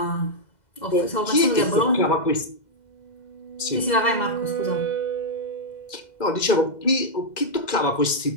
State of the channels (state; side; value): late; right; 2.0 ms